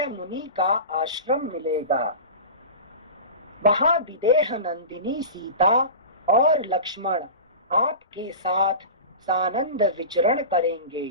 मुनि का आश्रम मिलेगा। वहां विदेह नंदिनी सीता और लक्ष्मण आपके साथ सानंद विचरण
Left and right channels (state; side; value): inverted; both; correlation -0.30